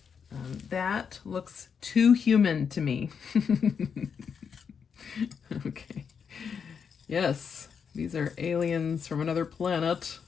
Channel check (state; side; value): quieter; right; 6.7 dB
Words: That looks too human to me. Okay. Yes, these are aliens from another planet.